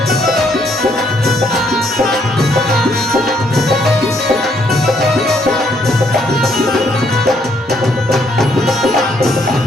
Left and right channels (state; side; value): normal; both; correlation 0.70